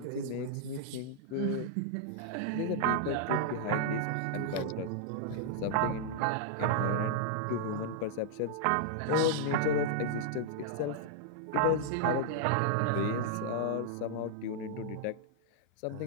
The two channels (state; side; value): different; both; correlation -0.01